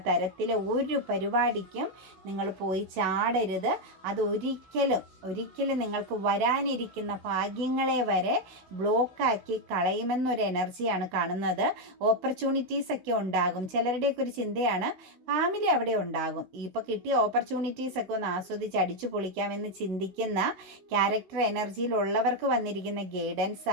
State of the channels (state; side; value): late; left; 16 ms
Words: തരത്തിലെ ഒരു പരിപാടിക്കും നിങ്ങൾ പോയി ചാടരുത്. അത് ഒരിക്കലും നിങ്ങൾക്ക് വരാനിരിക്കുന്ന ഭാഗ്യങ്ങളെ വരെ ബ്ലോക്കാക്കി കളയുമെന്നൊരു എനർജിയാണ് കാണുന്നത്. ഓപ്പർച്യൂണിറ്റീസ് ഒക്കെ ഉണ്ടാകും. ചിലരുടെയൊക്കെ ഒരു ചിന്തയാണ് ഫാമിലി അവിടെ ഉണ്ടാകും, ഇപ്പോൾ കിട്ടിയ ഓപ്പർച്യൂണിറ്റീസ് ഒക്കെ ഒന്ന് ആസ്വദിച്ച് അടിച്ചു പൊളിക്കാമെന്ന് ചിന്തിക്കുന്ന ക്യാരക്ടർ എനർജിയിലുള്ളവർക്ക് വന്നിരിക്കുന്ന ഗൈഡൻസ്